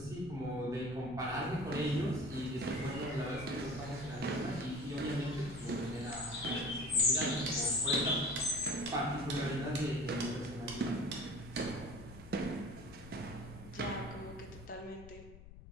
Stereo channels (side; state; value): left; noise; rumble, 16 dB below the sound